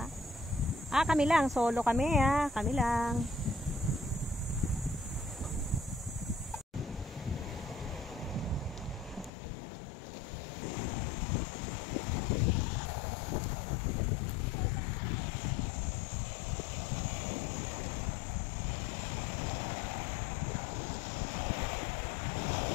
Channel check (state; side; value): drops out; right; at 9.3 s